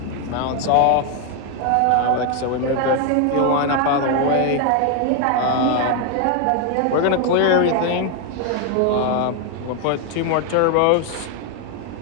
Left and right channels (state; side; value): different; both; correlation 0.01